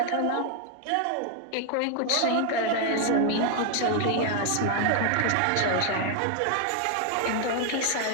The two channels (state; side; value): different; both; correlation 0.00